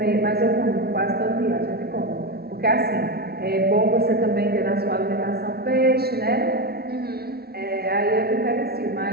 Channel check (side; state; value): left; late; 0.45 ms